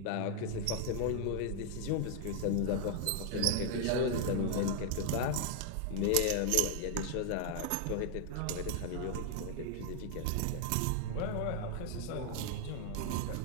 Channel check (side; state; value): both; different; correlation 0.00